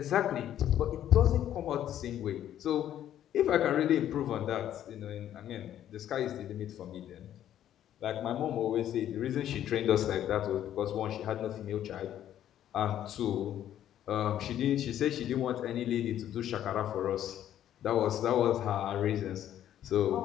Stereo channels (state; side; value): quieter; right; 11.2 dB